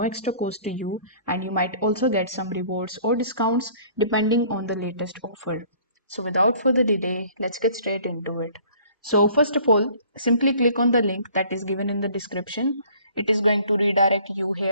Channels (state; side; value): inverted; both; correlation -0.54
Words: extra cost to you, and you might also get some rewards or discounts depending on the latest offer. So, without further delay, let's get straight into it. So, first of all, simply click on the link that is given in the description. It is going to redirect you